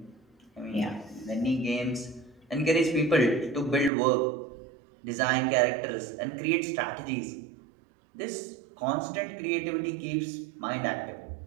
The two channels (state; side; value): drops out; left; at 3.9 s